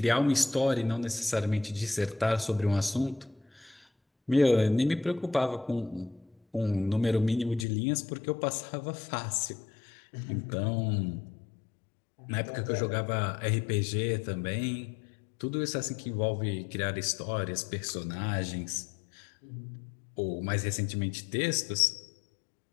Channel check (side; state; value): right; drops out; at 7.7 s